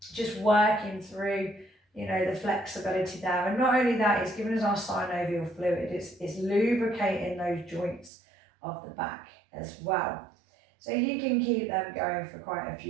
just working through, the flexibility there. And not only that, it's giving us our synovial fluid. It's lubricating those joints of the back as well. So you can keep them going for quite a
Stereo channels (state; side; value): drops out; left; at 8.1 s